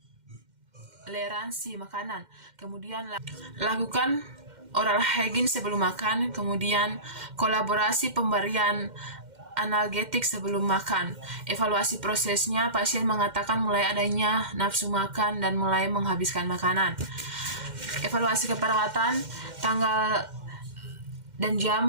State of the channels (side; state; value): left; late; 2.1 ms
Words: intoleransi makanan. Kemudian lakukan oral hygiene sebelum makan. Kemudian kolaborasi pemberian analgetik sebelum makan. Evaluasi prosesnya, pasien mengatakan mulai adanya nafsu makan dan mulai menghabiskan makanan. Evaluasi keperawatan, tanggal dan